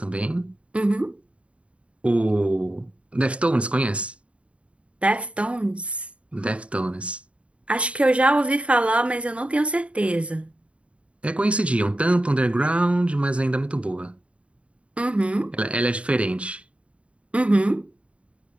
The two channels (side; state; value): left; late; 0.061 ms